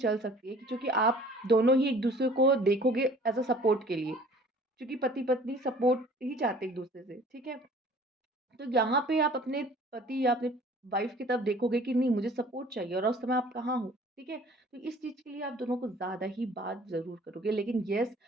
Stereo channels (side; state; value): both; normal; correlation 0.50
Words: सकती है, क्योंकि आप दोनों ही एक दूसरे को देखोगे एज अ सपोर्ट के लिए, क्योंकि पति पत्नी सपोर्ट ही चाहते एक दूसरे से। ठीक है। तो यहाँ पे आप अपने पति या अपने वाइफ की तरफ देखोगे कि नहीं, मुझे सपोर्ट चाहिए, और उस समय आप कहाँ हो। ठीक है। तो इस चीज़ के लिए आप दोनों को ज़्यादा ही बात ज़रूर करोगे। लेकिन यस,